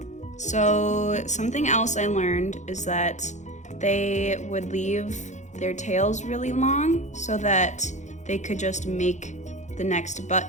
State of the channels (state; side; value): late; right; 0.34 ms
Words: So something else I learned is that they would leave their tails really long so that they could just make the next